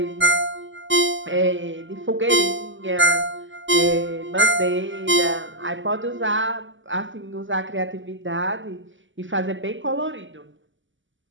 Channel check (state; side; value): late; left; 0.55 ms